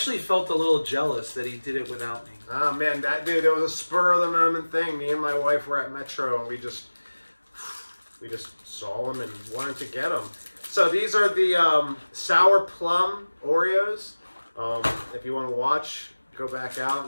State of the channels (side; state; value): both; inverted; correlation -1.00